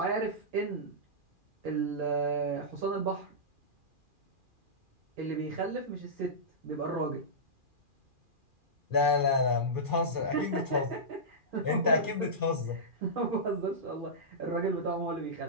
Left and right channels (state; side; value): late; left; 2.4 ms